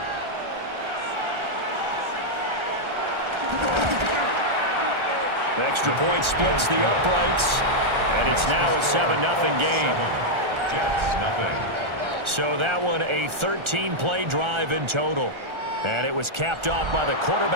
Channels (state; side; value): late; left; 1.3 ms